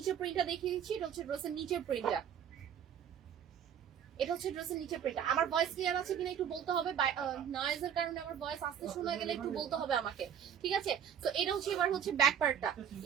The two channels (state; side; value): quieter; left; 8.7 dB